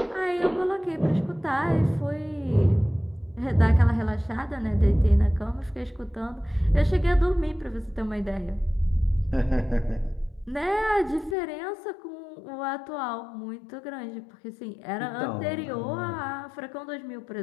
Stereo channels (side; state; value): right; drops out; at 11.4 s